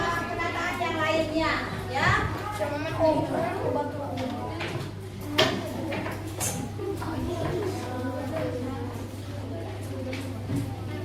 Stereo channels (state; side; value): identical; both; correlation 1.00